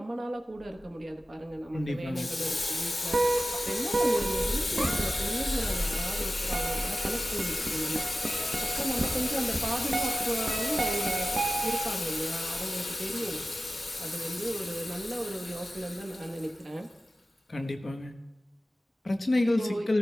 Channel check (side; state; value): both; normal; correlation 0.95